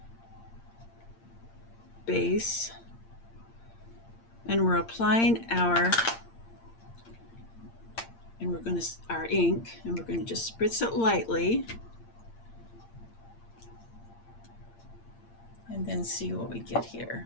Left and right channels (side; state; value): right; late; 8.7 ms